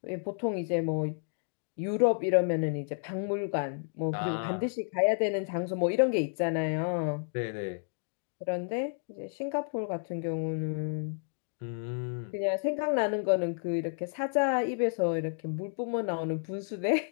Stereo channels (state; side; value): silent; right; digital silence